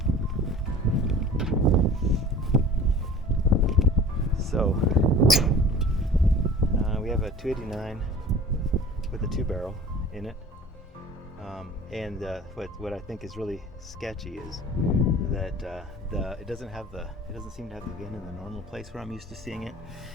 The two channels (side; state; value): both; normal; correlation 0.44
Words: So we have a 289 with a 2-barrel in it, and what I think is really sketchy is that it doesn't seem to have the VIN in the normal place where I'm used to seeing it,